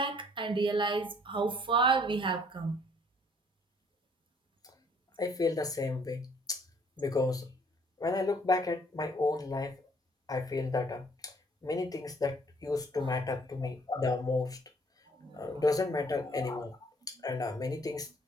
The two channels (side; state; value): both; normal; correlation 0.61